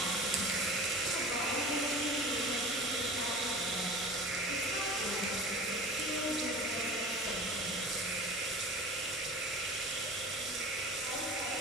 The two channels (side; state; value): both; normal; correlation 0.38